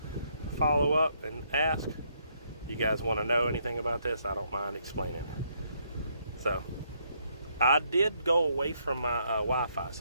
follow up and ask. You guys want to know anything about this? I don't mind explaining. So I did go away from my Wi-Fi,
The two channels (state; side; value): inverted; both; correlation -0.72